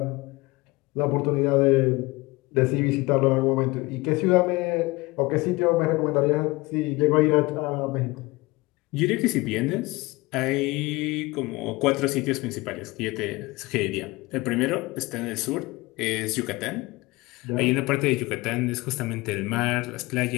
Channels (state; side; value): quieter; right; 22.3 dB